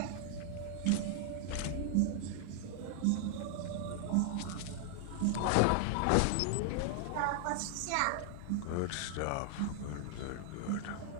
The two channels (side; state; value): both; different; correlation 0.00